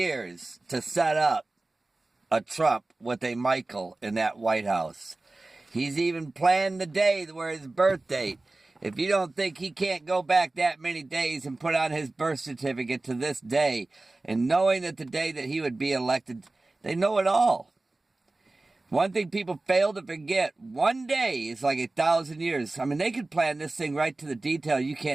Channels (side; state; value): left; quieter; 3.1 dB